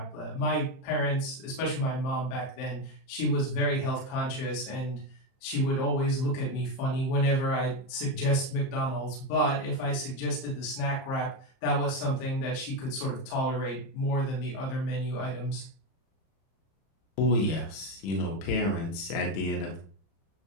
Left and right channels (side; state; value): right; late; 31 ms